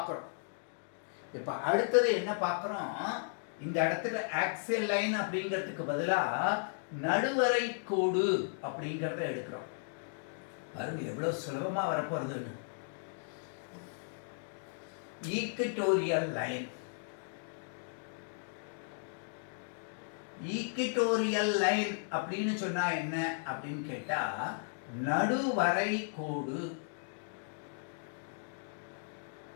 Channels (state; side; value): silent; right; digital silence